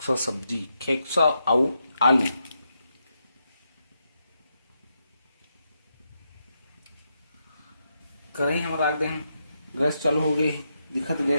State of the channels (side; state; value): both; inverted; correlation -0.82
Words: सब्जी, खेकसा और आलू। कढ़ाई हम रख दें, गैस चालू हो गई, दिखत